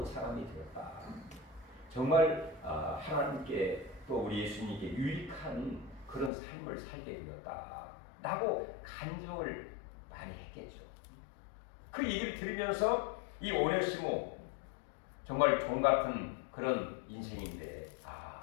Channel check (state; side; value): drops out; right; at 6.3 s